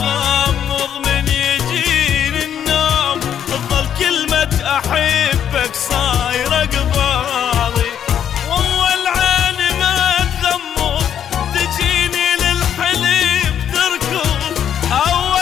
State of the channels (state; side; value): quieter; right; 9.3 dB